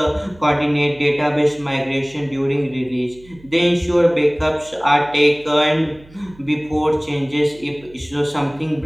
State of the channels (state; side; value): noise; right; hum, 25 dB below the sound